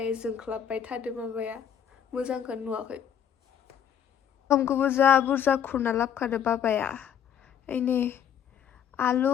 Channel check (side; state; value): right; quieter; 8.9 dB